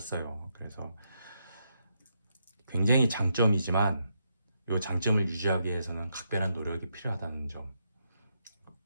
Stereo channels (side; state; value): both; inverted; correlation -0.80